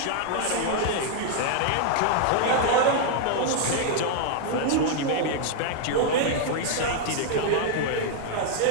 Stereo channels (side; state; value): both; different; correlation 0.00